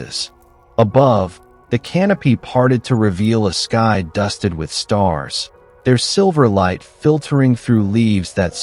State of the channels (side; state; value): both; identical; correlation 1.00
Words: Above, the canopy parted to reveal a sky dusted with stars, their silver light filtering through leaves that